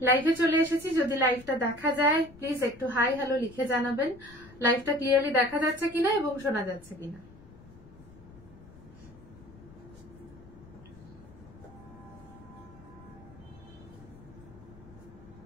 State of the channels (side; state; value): left; noise; rumble, 21 dB below the sound